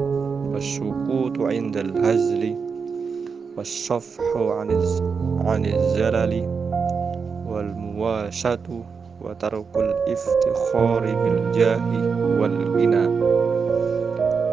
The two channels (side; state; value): left; quieter; 5.5 dB